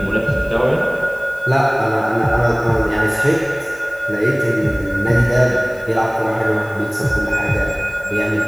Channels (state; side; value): noise; left; hiss, 25 dB below the sound